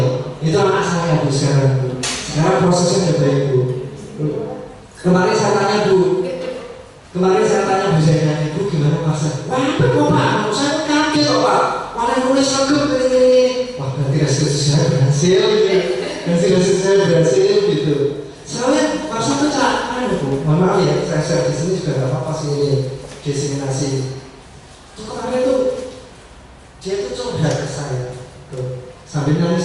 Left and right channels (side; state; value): both; identical; correlation 1.00